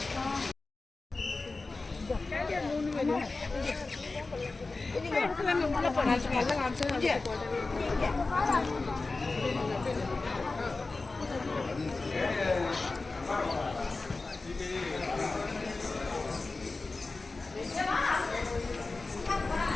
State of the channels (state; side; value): quieter; right; 3.6 dB